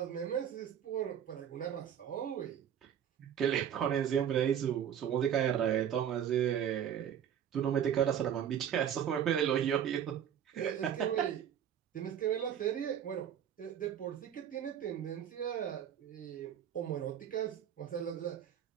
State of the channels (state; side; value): quieter; left; 9.3 dB